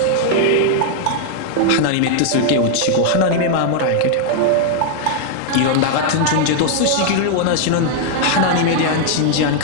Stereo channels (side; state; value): both; different; correlation -0.01